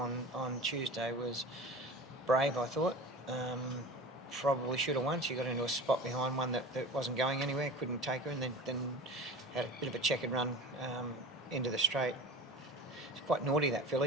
on Tuesday was brave, I thought. Probably should have won. She got into a spot behind one that wasn't going anywhere, couldn't take her, and then had a bit of a checkered run into the straight. It's quite naughty, that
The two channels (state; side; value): normal; both; correlation 0.34